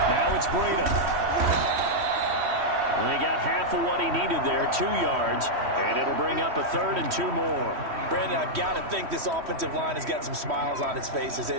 it's Breida. And he got half of what he needed there, 2 yards, and it'll bring up a 3rd and 2 more. Brandon, I've got to think this offensive line has got some smiles on its faces.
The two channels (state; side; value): late; left; 3.1 ms